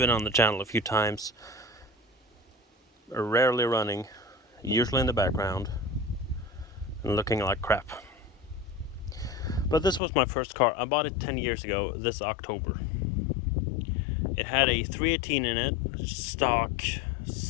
on the channel a few times, rarely running, usually in the background, and looking like crap. But this was my first car. I bought it 10 years ago this October. It had a 318 in it, stock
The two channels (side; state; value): right; drops out; at 10.0 s